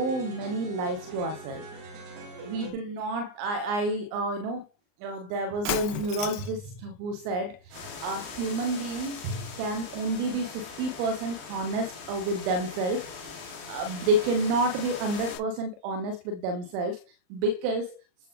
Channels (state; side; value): late; left; 39 ms